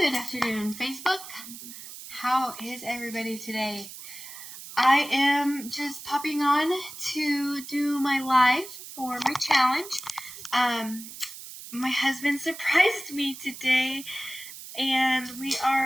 Good afternoon, Facebook. How is everybody today? I am just popping on to do my live for my challenge. My husband surprised me today, and we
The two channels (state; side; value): noise; right; hiss, 13 dB below the sound